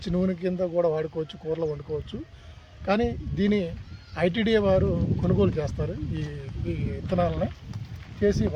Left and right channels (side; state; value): both; identical; correlation 1.00